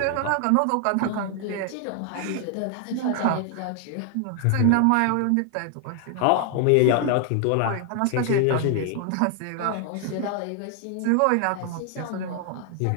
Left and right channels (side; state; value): both; different; correlation 0.00